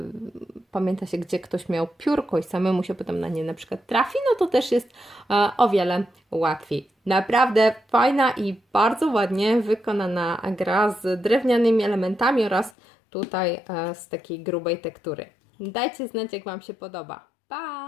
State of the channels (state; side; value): drops out; right; at 12.7 s